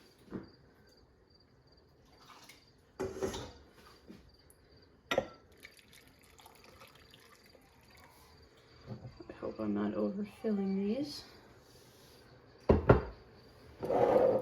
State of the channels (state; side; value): identical; both; correlation 1.00